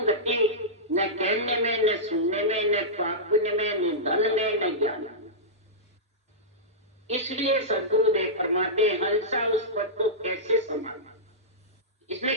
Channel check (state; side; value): normal; both; correlation -0.13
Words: गति न कहने में, न सुनने में, न पुण्य में, न धन में, न ज्ञान में। इसलिए सद्गुरुदेव फरमाते हंसा उस पद को कैसे संभालना।